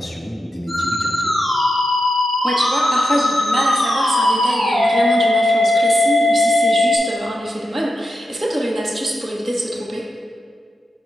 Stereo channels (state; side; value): normal; both; correlation 0.88